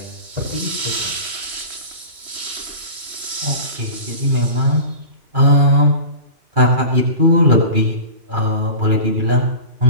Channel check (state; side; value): late; left; 3.1 ms